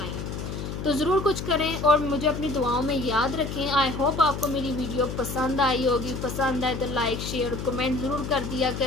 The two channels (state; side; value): noise; left; hum, 6 dB below the sound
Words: हूँ। तो ज़रूर कुछ करें और मुझे अपनी दुआओं में याद रखें। आई होप आपको मेरी वीडियो पसंद आई होगी। पसंद आए तो लाइक, शेयर, कमेंट ज़रूर कर दिया